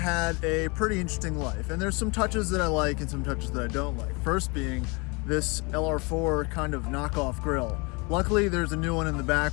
a pretty interesting life, and there's some touches that I like and some touches that I don't like. First being this LR4 kind of knockoff grille. Luckily, there's a new one in the back,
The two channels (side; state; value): right; quieter; 29.2 dB